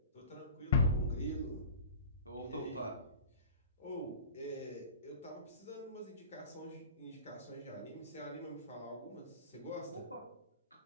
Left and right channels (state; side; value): inverted; both; correlation -0.38